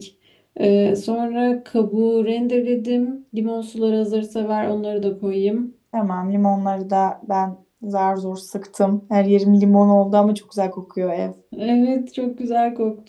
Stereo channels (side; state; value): both; identical; correlation 1.00